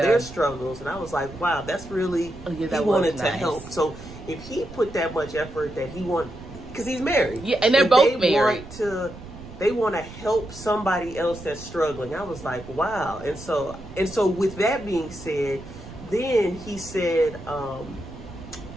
struggles, and I was like, wow, that's really, he wanted to help. So if he put that much effort that he want, because he's married, and they're both married, they want to help somebody else that's struggling. I was like, wow. And so with that being said, then he said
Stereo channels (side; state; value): right; noise; rumble, 15 dB below the sound